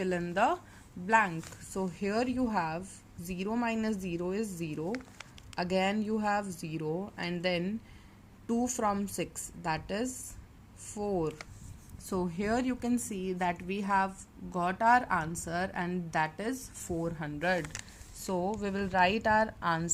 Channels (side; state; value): both; identical; correlation 1.00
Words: in the blank. So here you have 0 minus 0 is 0, again you have 0, and then 2 from 6, that is 4. So here you can see that we have got our answer, and that is 400. So we will write our